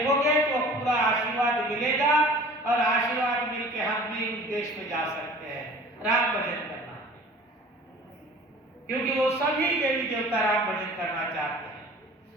तो पूरा आशीर्वाद मिलेगा, और आशीर्वाद मिलके हम भी उस देश में जा सकते हैं राम भजन करना, क्योंकि वो सभी देवी देवता राम भजन करना चाहते हैं,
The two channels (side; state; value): both; normal; correlation 0.46